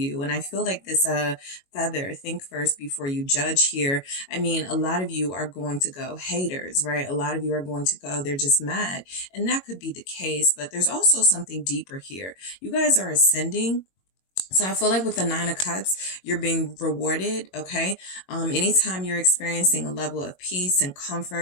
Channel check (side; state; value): right; late; 22 ms